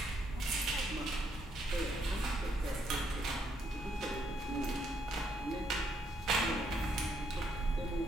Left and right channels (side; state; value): both; normal; correlation 0.73